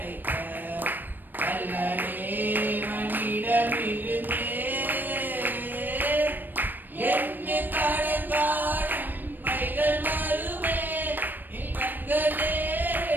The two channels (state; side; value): late; left; 0.091 ms